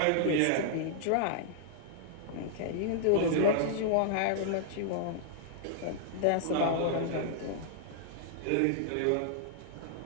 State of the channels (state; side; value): different; both; correlation -0.01